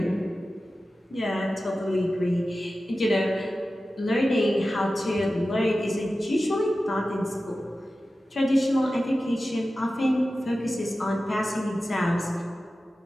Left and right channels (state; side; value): normal; both; correlation 0.94